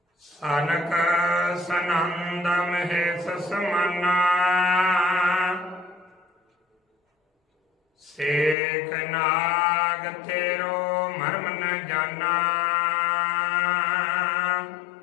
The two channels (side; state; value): right; drops out; at 8.6 s